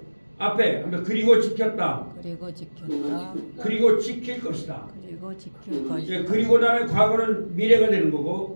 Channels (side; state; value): both; inverted; correlation -1.00